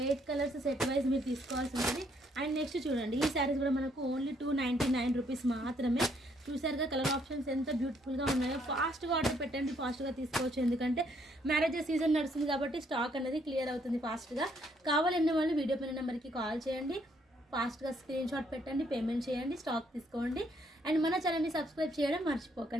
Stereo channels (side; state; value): both; normal; correlation 0.69